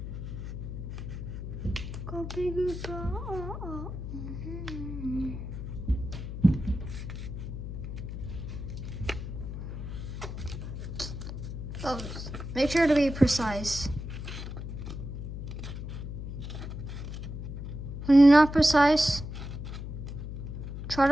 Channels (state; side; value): noise; left; hum, 7 dB below the sound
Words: Go big go. Oh, make sure to be precise. When you're not precise, try